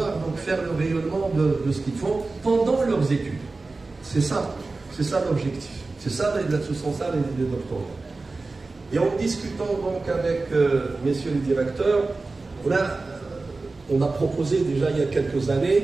donc faire le rayonnement de ce qu'ils font pendant leurs études. C'est ça l'objectif. Ce sont ça les doctorats. Et en discutant donc avec messieurs les directeurs, on a proposé déjà il y a quelques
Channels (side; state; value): left; quieter; 3.6 dB